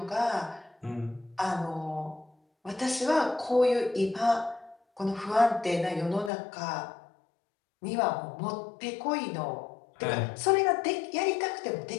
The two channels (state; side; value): drops out; right; at 6.3 s